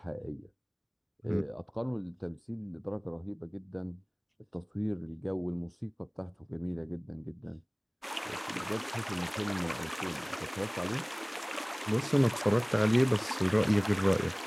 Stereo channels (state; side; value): identical; both; correlation 1.00